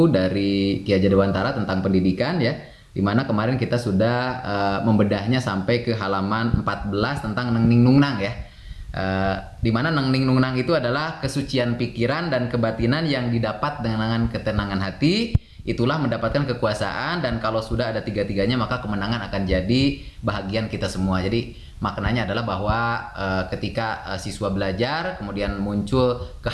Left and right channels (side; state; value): both; identical; correlation 1.00